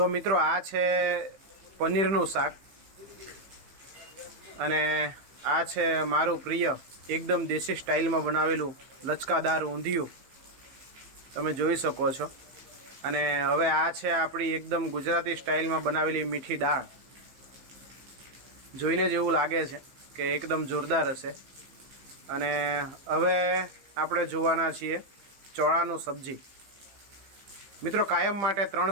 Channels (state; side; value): late; left; 15 ms